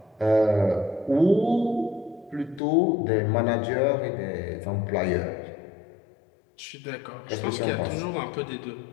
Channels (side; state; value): right; drops out; at 2.6 s